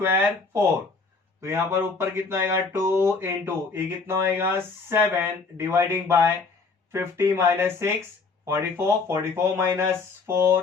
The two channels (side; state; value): right; quieter; 4.3 dB